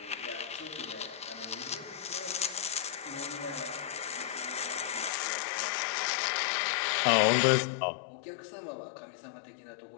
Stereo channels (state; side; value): drops out; right; at 5.1 s